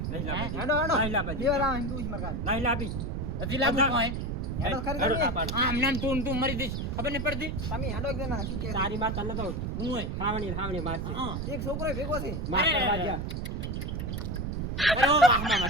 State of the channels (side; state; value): right; noise; rumble, 3 dB below the sound